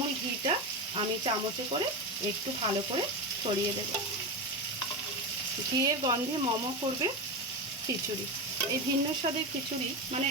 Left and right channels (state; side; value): normal; both; correlation 0.17